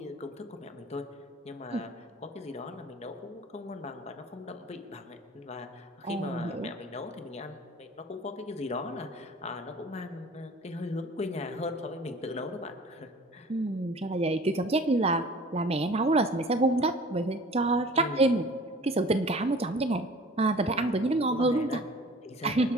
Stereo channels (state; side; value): normal; both; correlation 0.46